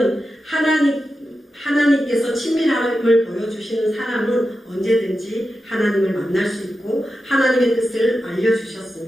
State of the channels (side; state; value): both; normal; correlation 0.91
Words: 하나님께서 친밀함을 보여주시는 사람은 언제든지 하나님을 만날 수 있고 하나님의 뜻을